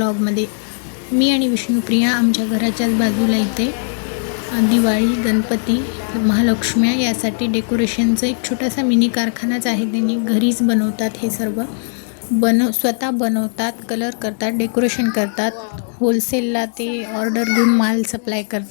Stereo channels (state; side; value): silent; right; 66 dB below the other